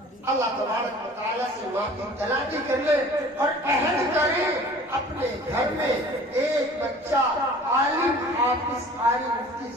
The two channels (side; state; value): both; normal; correlation 0.47